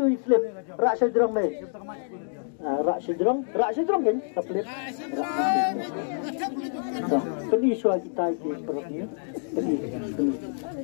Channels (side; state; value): right; silent; digital silence